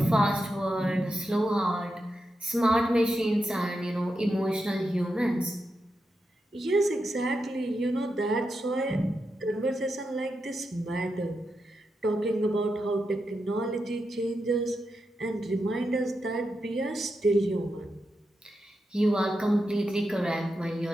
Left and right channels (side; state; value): both; normal; correlation 0.87